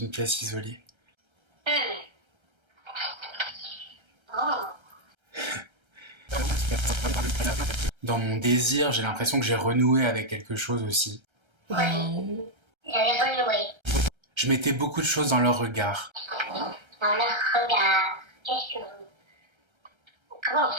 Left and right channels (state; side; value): late; left; 1.3 ms